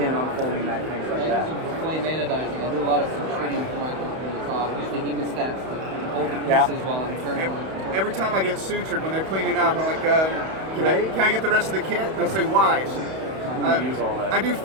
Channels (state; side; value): late; left; 31 ms